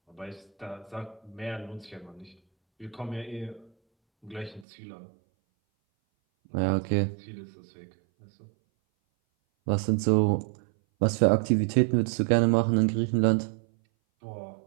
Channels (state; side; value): drops out; left; at 4.7 s